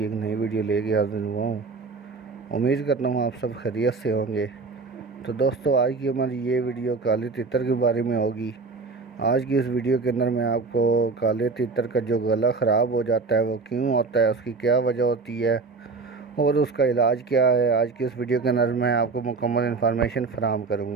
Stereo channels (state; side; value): quieter; left; 4.2 dB